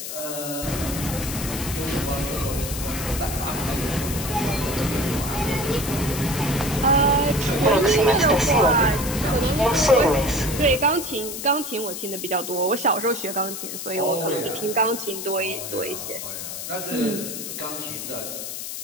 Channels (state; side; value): noise; left; hiss, 7 dB below the sound